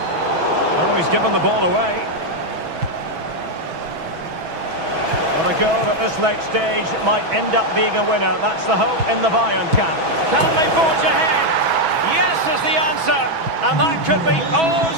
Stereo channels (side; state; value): left; late; 6.1 ms